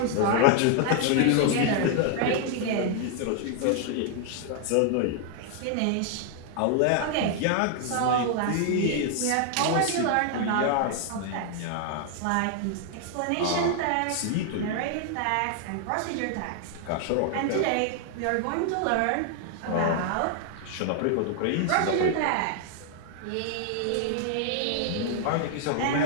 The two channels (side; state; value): both; different; correlation 0.00